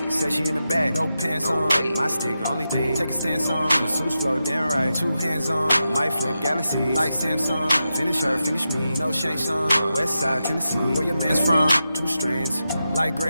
Said she in the back, no pants on. My stick, only thing. Take a stance on. Masseuse flow, damn right. 2 hands on. My flip galaxy like Samsung. Finish her, finish me. No shank song. West side Tennessee. Where your man's from? 2 strands like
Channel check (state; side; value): inverted; both; correlation -0.90